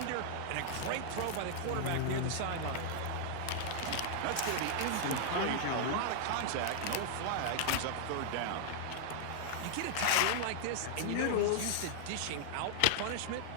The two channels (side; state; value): both; different; correlation -0.01